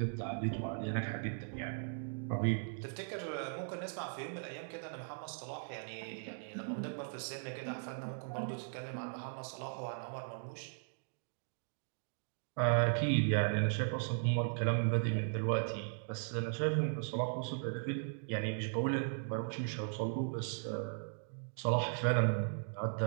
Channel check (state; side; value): silent; left; digital silence